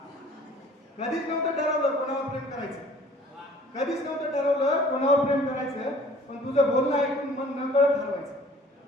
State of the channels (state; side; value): normal; both; correlation 0.52